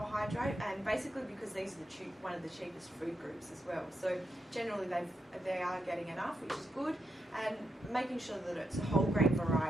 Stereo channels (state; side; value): normal; both; correlation 0.84